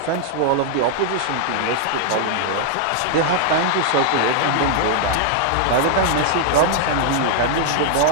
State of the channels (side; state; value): both; different; correlation -0.01